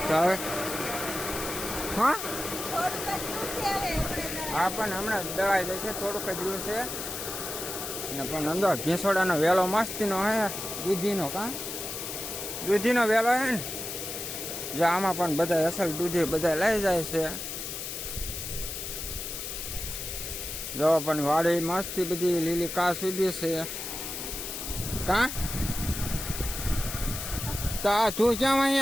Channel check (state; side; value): noise; left; hiss, 6 dB below the sound